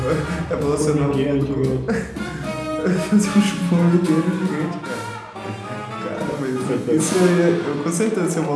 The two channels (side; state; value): both; identical; correlation 1.00